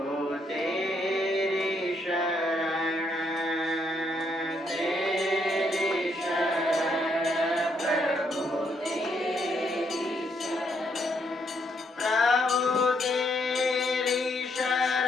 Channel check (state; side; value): normal; both; correlation 0.74